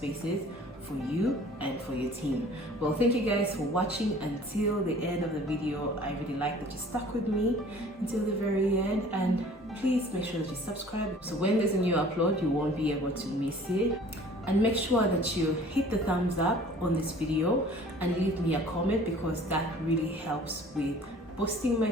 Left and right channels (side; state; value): both; normal; correlation 0.49